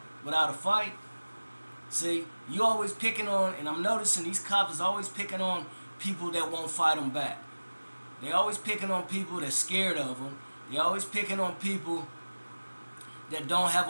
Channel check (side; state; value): both; inverted; correlation -1.00